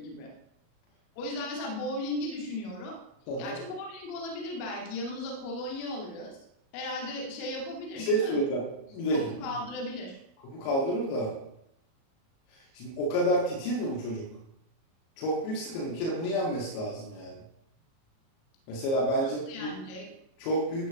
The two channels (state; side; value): late; right; 37 ms